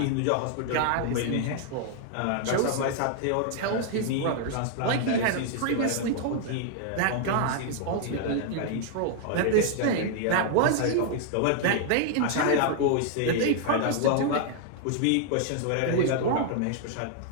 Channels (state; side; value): different; both; correlation 0.00